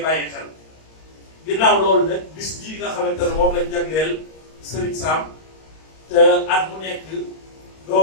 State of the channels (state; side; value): late; right; 32 ms